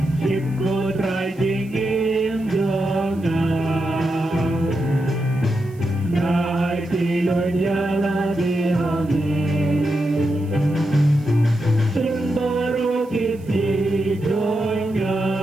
Shim ko try jingim jongan Nai tilon yala dihami Shim baru kisi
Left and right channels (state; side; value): noise; right; hiss, 29 dB below the sound